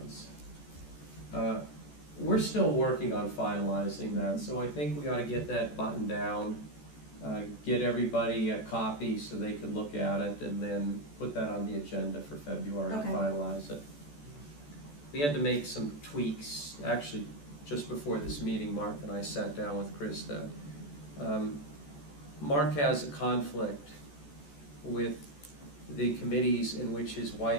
We're still working on finalizing that, so I think we ought to get that buttoned down, get everybody a copy so they can look at it, and then put that on the agenda for February to Okay. finalize it. We had to make some tweaks, actually, just before this meeting, Mark and I sat down with Krista. Mark has a conflict with the committees in which his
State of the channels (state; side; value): late; right; 14 ms